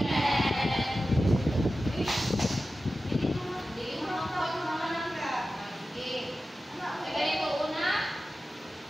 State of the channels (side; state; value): both; normal; correlation 0.94